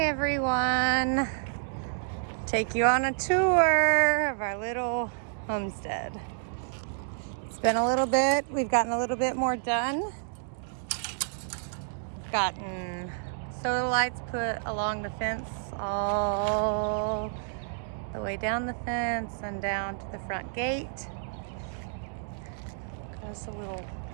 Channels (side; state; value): left; silent; digital silence